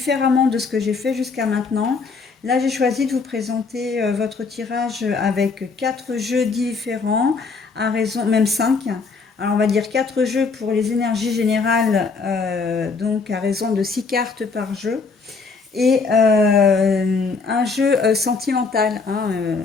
de ce que j'ai fait jusqu'à maintenant, là j'ai choisi de vous présenter votre tirage avec quatre jeux différents, à raison, même cinq. Alors on va dire quatre jeux pour les énergies générales, donc à raison de 6 cartes par jeu et un jeu sentimental,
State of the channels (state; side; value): quieter; right; 4.6 dB